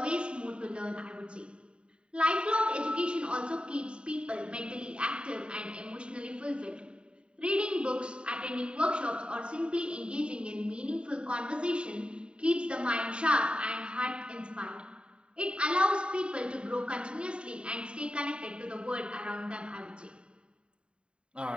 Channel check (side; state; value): left; late; 0.053 ms